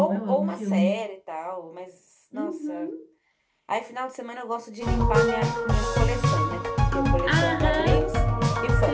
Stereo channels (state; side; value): identical; both; correlation 1.00